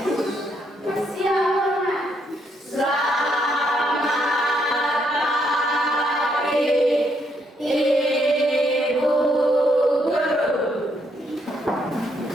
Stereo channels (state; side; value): normal; both; correlation 0.74